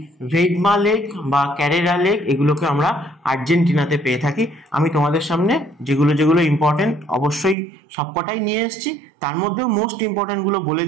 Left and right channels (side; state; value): left; drops out; at 7.6 s